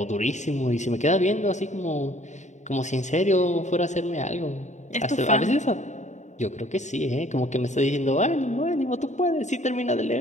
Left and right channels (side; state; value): right; late; 0.34 ms